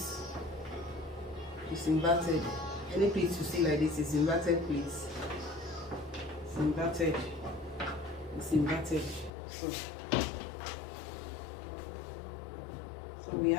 It's inverted. Any pleats you see like this is inverted pleats. It's inverted. It's inverted. So we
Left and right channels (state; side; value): drops out; right; at 9.3 s